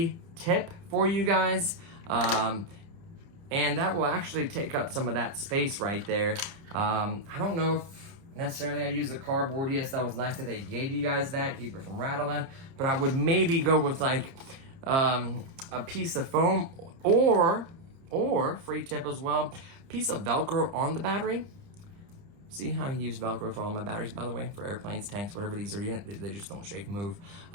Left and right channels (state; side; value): late; left; 30 ms